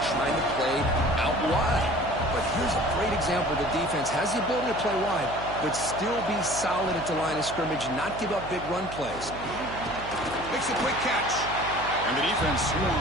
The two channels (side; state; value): right; noise; hum, 12 dB below the sound